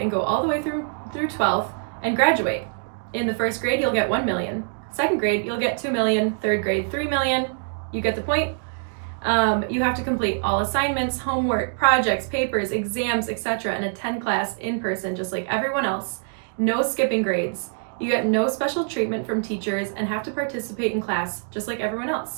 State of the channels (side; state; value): left; silent; digital silence